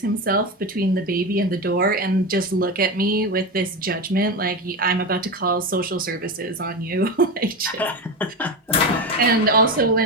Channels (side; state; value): both; normal; correlation 0.19